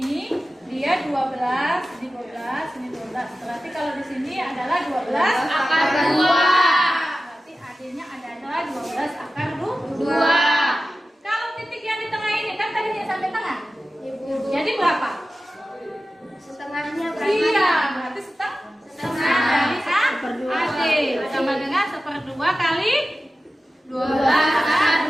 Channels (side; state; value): both; normal; correlation 0.94